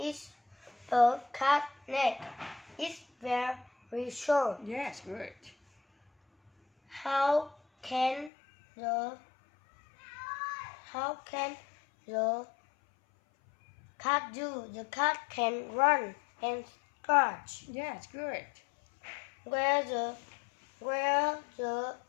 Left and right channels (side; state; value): right; drops out; at 8.3 s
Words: a cat neck? It's very short. Yes, good. How can the cat do? The cat can run and scratch. Yes, good. Where the